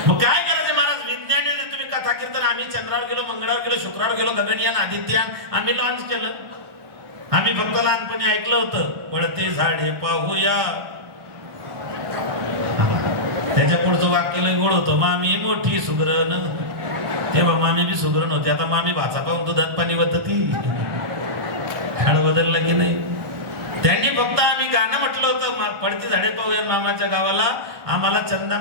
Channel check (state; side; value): late; left; 1.5 ms